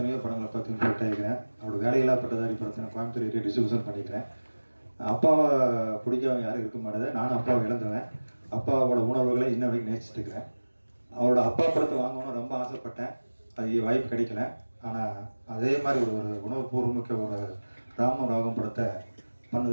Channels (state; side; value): inverted; both; correlation -1.00